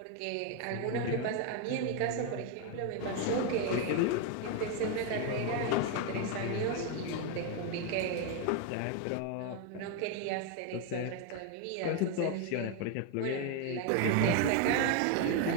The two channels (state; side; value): different; both; correlation 0.01